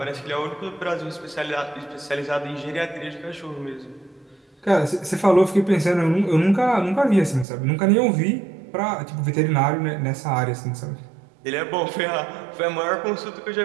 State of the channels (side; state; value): left; drops out; at 7.5 s